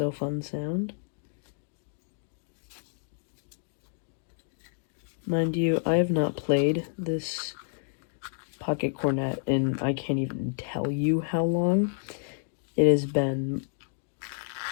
fun sound. Mind you, I have not played this pocket cornet and I can't even tell you how long. It has been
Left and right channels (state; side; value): silent; right; digital silence